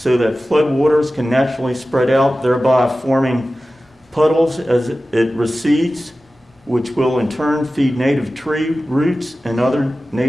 that floodwaters can naturally spread out, thereby forming puddles as it recedes, which will in turn feed native tree roots and other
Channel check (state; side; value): normal; both; correlation 0.95